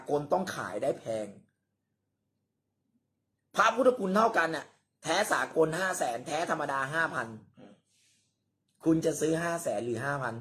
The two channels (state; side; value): identical; both; correlation 1.00